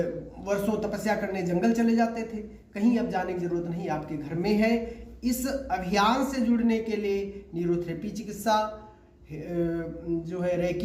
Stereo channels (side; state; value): both; identical; correlation 1.00